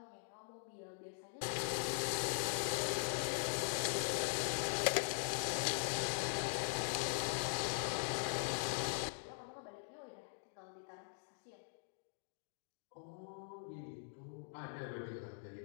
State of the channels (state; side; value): silent; right; digital silence